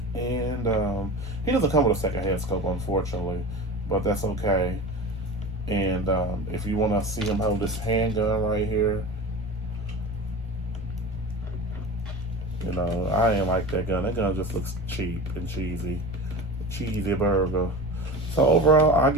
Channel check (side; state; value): right; noise; rumble, 19 dB below the sound